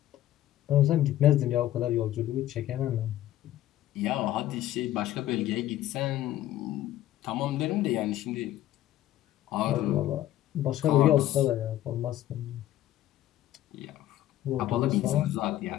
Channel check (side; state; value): right; quieter; 13.4 dB